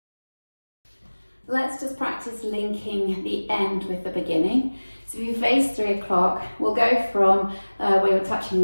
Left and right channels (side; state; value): both; inverted; correlation -1.00